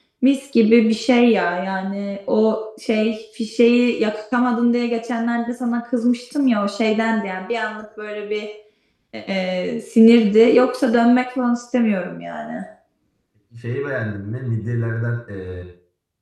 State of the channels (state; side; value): identical; both; correlation 1.00